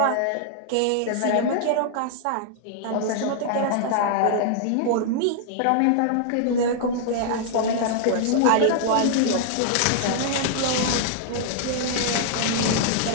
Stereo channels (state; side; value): different; both; correlation -0.01